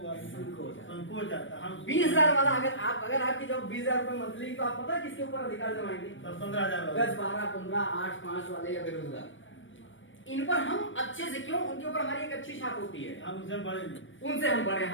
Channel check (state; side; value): late; right; 0.56 ms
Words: संकोच जाता। हम 20,000 वाला अगर आपकी जॉब 20,000 रुपए मंथली, तो आप पता है किसके ऊपर अधिकार जमाएंगे? 10-15,000 10 12 15 8 5 वाले या बेरोजगार, इन पर हम अच्छे से, क्यों, उनके ऊपर हमारी एक अच्छी छाप होती है। हम उनसे बड़े नहीं, उनसे हम बड़े,